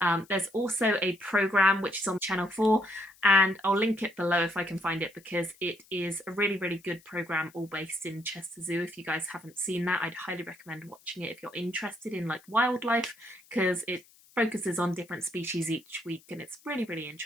There's also a programme which is on Channel 4, and I'll link it below if I can find it, because it is a really, really good programme all based in Chester Zoo. If you guys haven't seen that, I'd highly recommend watching it if you're interested in like wildlife, because it focuses on different species each week and it's really, really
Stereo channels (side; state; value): left; noise; hiss, 27 dB below the sound